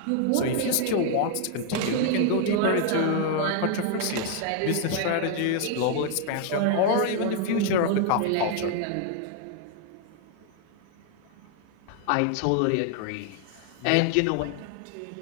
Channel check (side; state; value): both; different; correlation 0.00